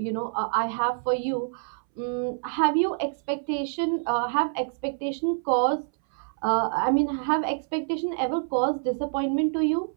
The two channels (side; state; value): left; silent; 60 dB below the other